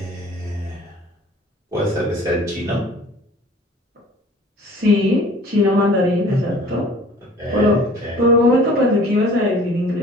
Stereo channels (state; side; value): normal; both; correlation 0.49